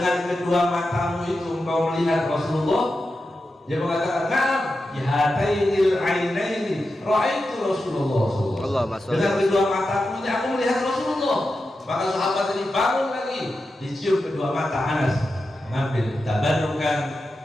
kedua matamu itu engkau melihat Rasulullah? Dia mengatakan, na'am, bihatainil ainaini ra'aitu Rasulullah SAW. Dengan kedua mataku ini aku melihat Rasulullah. Maka sahabat tadi bangun lagi, dicium kedua mata Anas, mengambil tabarrukan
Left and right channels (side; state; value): both; normal; correlation 0.90